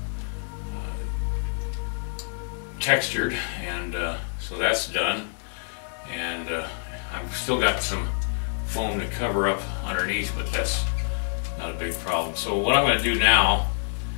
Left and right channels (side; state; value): right; silent; digital silence